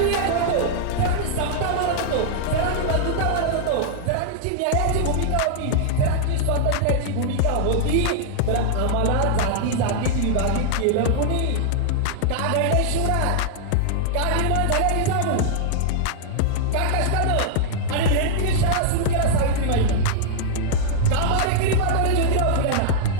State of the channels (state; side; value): different; both; correlation -0.01